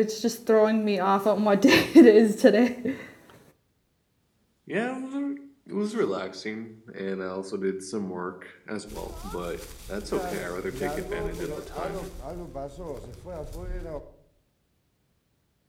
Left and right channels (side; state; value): both; identical; correlation 1.00